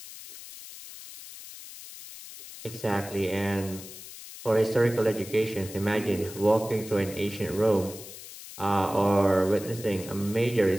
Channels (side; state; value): left; noise; hiss, 14 dB below the sound